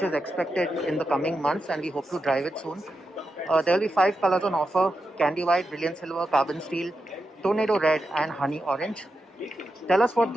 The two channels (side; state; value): both; normal; correlation 0.88